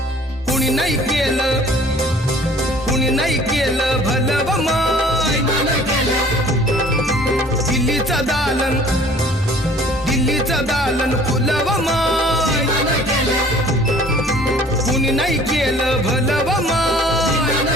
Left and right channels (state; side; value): normal; both; correlation 0.52